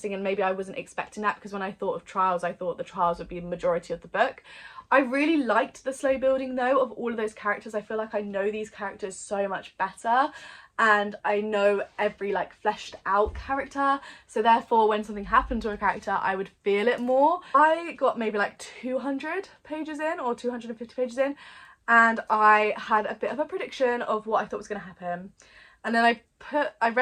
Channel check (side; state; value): both; identical; correlation 1.00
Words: and maybe I wasn't expecting that, because when I thought of trials, I thought the trials would be the majority of the book. I really liked the slow building though of all of those characters. I feel like I know these characters so much better, and I know every like fleshed out character, so therefore when something happened to a character I would feel it more. I got maybe like 200 pages in or 250 pages in, and I had a bit of a prediction of what I thought was going to happen, and then I